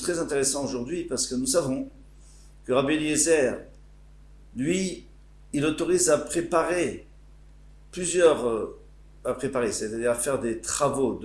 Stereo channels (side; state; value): both; identical; correlation 1.00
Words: très intéressant aujourd'hui parce que nous savons que Rabbi Eliezer, lui, il autorise à préparer c'est-à-dire à faire des travaux